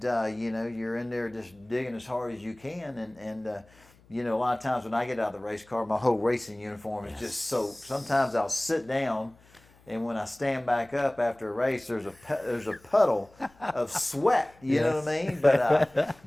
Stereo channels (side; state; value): left; noise; hum, 28 dB below the sound